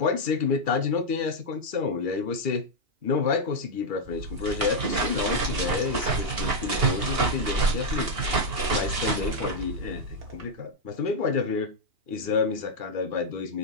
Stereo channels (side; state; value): left; late; 2.8 ms